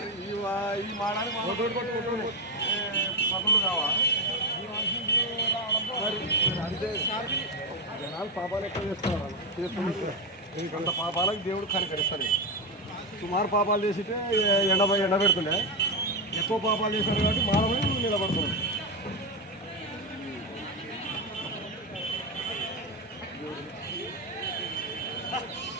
ఈ మాడాలి పనులు కావా? మరి అంతే. జనాలు పాపాలు ఎక్కువ చేస్తున్నారు. ఇంకంత పాపాలకు దేవుడు కనికరిస్తాడు. సుమారు పాపాలు చేసితే ఎండ పెడుతుండే, ఎక్కువ పాపాలు చేశారు కాబట్టి మానవుడు నిలబడుతున్నాడు.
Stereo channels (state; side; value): normal; both; correlation 0.10